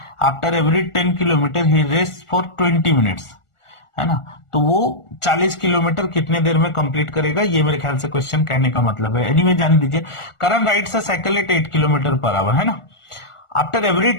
after every 10 kilometre he rest for 20 minutes, है ना। तो वो 40 किलोमीटर कितने देर में कंप्लीट करेगा, ये मेरे ख्याल से क्वेश्चन कहने का मतलब है। एनीवे जान दीजिए, Karan rides a cycle at 8 kilometre per hour, है ना, आफ्टर एवरी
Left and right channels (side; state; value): right; late; 1.4 ms